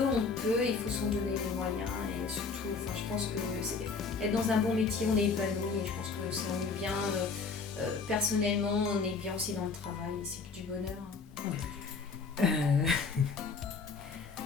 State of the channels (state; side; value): quieter; right; 4.8 dB